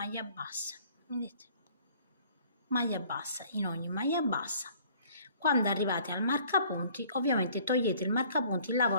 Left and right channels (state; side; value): inverted; both; correlation -0.55